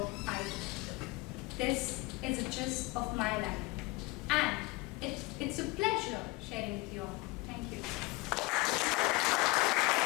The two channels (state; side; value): quieter; right; 23.4 dB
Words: I do. This is a gist of my life, and it's a pleasure sharing with you all. Thank you.